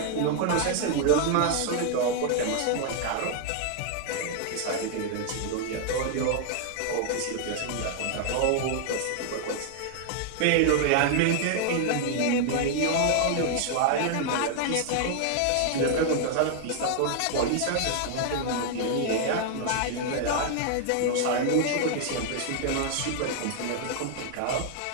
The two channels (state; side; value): different; both; correlation 0.00